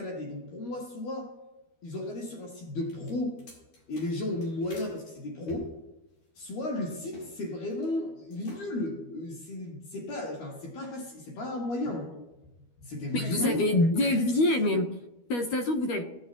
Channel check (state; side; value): late; right; 12 ms